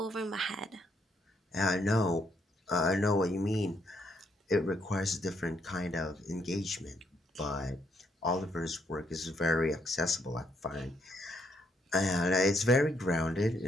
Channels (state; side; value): normal; both; correlation 0.73